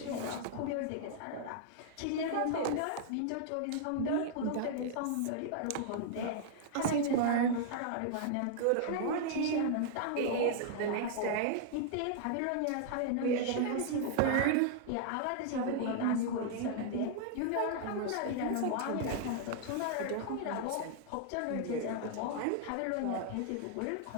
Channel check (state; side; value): different; both; correlation -0.01